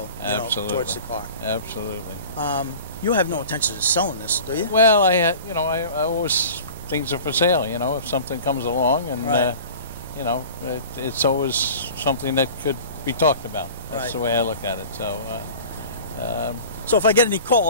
Absolutely. towards the car. Absolutely. You have no intention of selling this, do you? Well, I always, things are for sale. You know, if something comes along, and Right. it's always something that could be talked about. That's Right. the way I look at it. So. So if I get any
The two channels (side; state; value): both; inverted; correlation -0.41